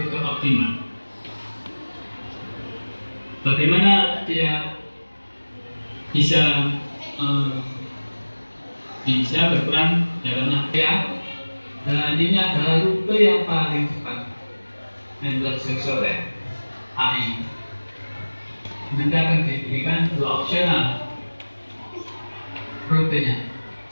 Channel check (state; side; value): inverted; both; correlation -1.00